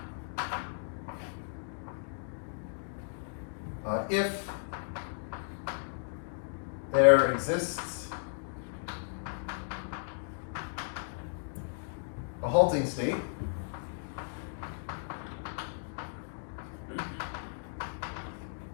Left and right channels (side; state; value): right; silent; digital silence